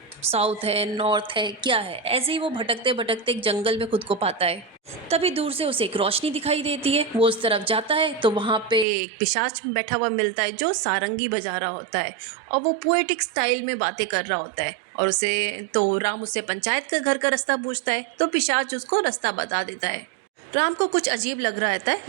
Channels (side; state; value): left; drops out; at 8.8 s